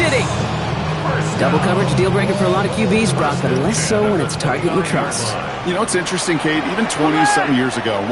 Double coverage deal breaker for a lot of QBs, Brock, but less so when it's target you trust. You know, it's interesting, Kate, even 20-something years ago,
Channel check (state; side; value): identical; both; correlation 1.00